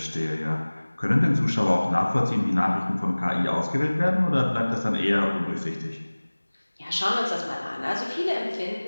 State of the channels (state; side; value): inverted; both; correlation -1.00